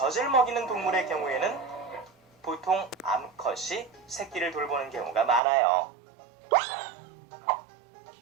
먹이는 동물의 경우에는 보통 암컷이 새끼를 돌보는 경우가 많아요.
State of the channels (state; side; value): drops out; left; at 5.4 s